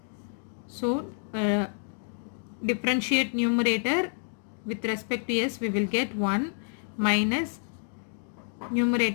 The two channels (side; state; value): right; silent; digital silence